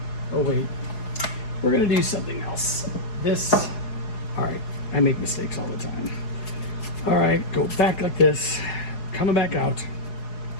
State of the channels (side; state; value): right; late; 4.8 ms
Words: Oh wait, we're gonna do something else. This, all right, I make mistakes all the time. All right, go back like this, coming back out.